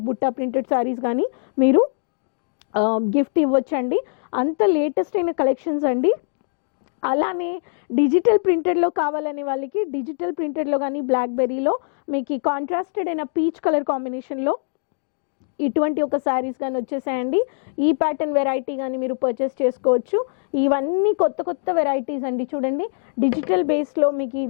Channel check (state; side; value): silent; right; digital silence